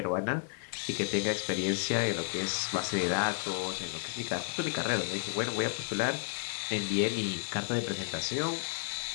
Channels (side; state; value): right; silent; 56 dB below the other